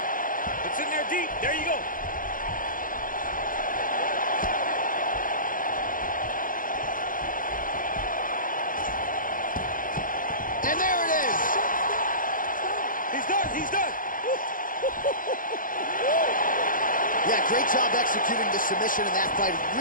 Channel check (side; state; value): right; late; 0.40 ms